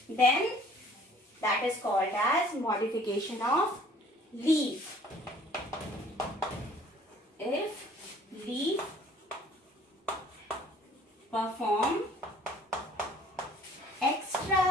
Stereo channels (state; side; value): normal; both; correlation 0.55